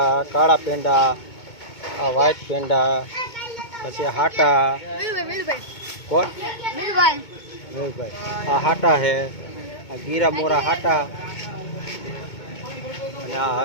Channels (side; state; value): right; late; 2.2 ms